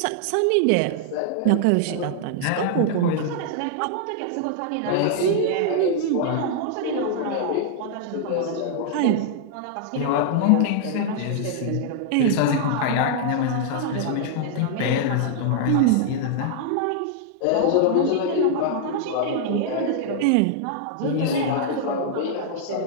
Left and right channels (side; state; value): both; different; correlation -0.01